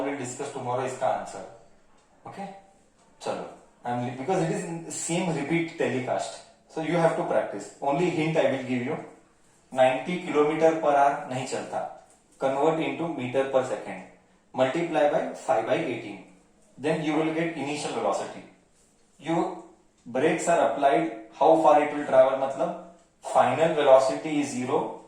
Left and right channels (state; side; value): identical; both; correlation 1.00